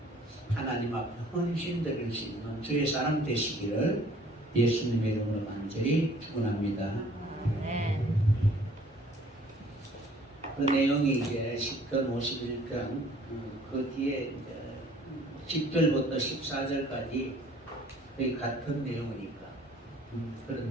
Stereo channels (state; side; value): normal; both; correlation 0.55